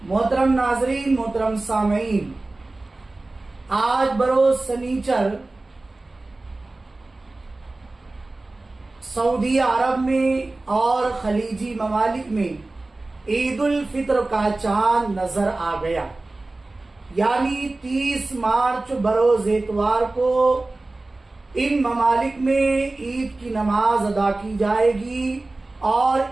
محترم ناظرین، محترم سامعین، آج بروز سنیچر سعودی عرب میں اور خلیجی ممالک میں عید الفطر کا چاند نظر آ گیا، یعنی 30 مارچ بروز اتوار کو ان ممالک میں عید کی نماز ادا کی جائے گی اور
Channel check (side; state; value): left; quieter; 3.1 dB